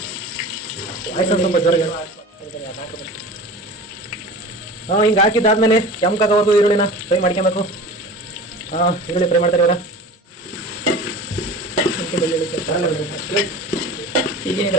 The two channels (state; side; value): normal; both; correlation 0.36